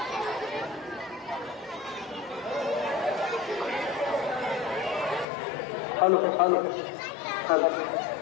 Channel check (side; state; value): right; drops out; at 5.2 s